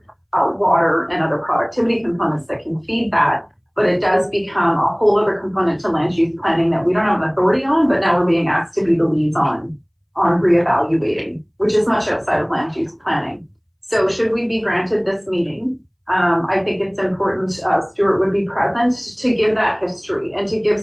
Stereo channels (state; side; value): identical; both; correlation 1.00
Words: water and other productivity components that can feed that. But it does become a whole other component to land use planning that we don't have an authority on, but now we're being asked to be the leads on reevaluating, which is much outside of land use planning. So should we be granted this meeting, I think it's important Stuart would be present to give that history and to give